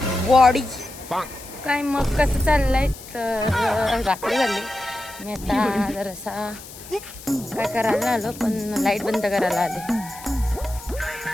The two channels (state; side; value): noise; left; hiss, 16 dB below the sound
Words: बॉडी काय मग कसं चाललंय. तर रात्री झाली मी आता जरासा काय करायला आलो पण लाईट बंद करायला आले.